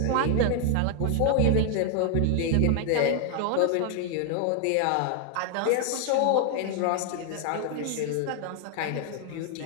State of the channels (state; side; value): different; both; correlation 0.00